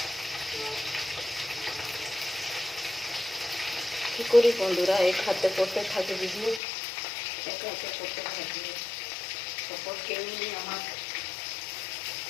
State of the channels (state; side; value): drops out; right; at 6.6 s